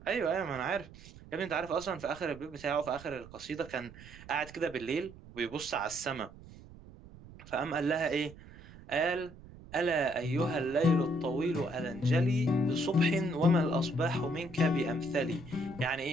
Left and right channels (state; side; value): noise; right; rumble, 18 dB below the sound